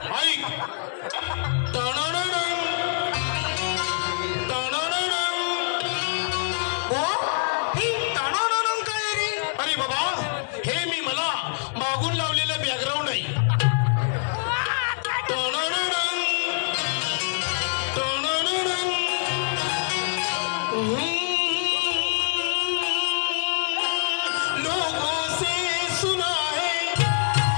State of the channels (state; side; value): silent; right; digital silence